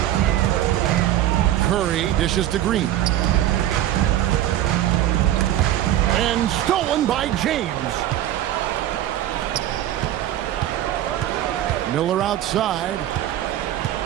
Curry dishes to Green. And stolen by James. Miller outside.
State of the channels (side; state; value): left; quieter; 12.7 dB